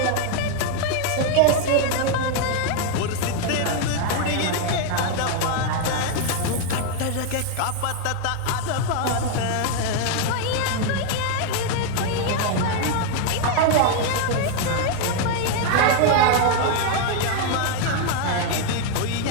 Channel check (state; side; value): different; both; correlation 0.00